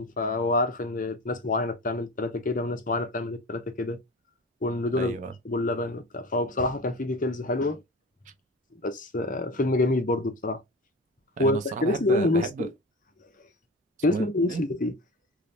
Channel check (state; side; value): normal; both; correlation 0.32